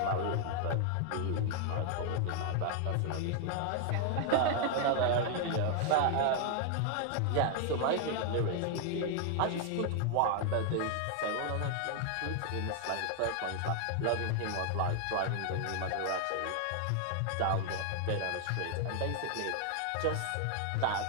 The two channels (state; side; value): different; both; correlation 0.00